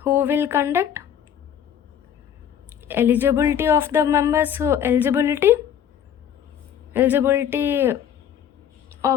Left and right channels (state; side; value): quieter; right; 9.2 dB